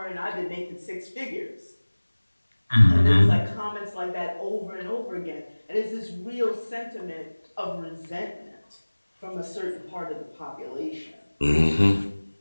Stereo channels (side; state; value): both; inverted; correlation -1.00